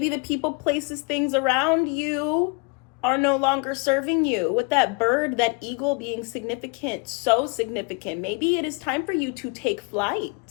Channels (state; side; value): quieter; right; 30.7 dB